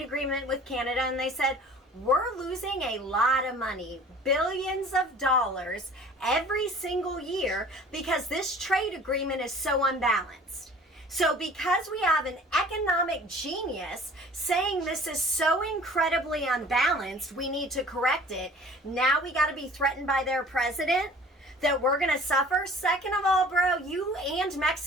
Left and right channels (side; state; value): both; normal; correlation 0.48